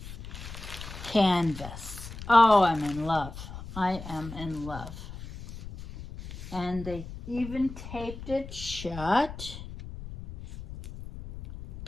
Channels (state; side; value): noise; left; rumble, 12 dB below the sound